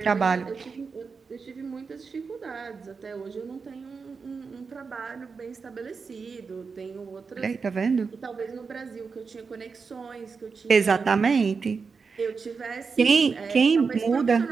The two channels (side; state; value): left; quieter; 5.1 dB